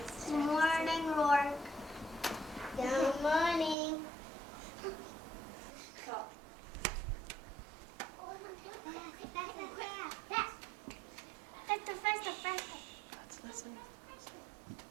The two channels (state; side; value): drops out; left; at 3.8 s